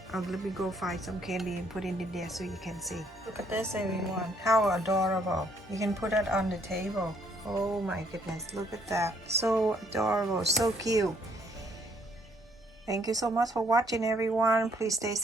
me go find some candy and put it in there so you can see. Look at this, everyone. How adorable. You can put it on the table. Oh my goodness, look at that. So adorable, so cute. Thank you so much for watching, everyone. Please stay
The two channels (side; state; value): both; normal; correlation 0.67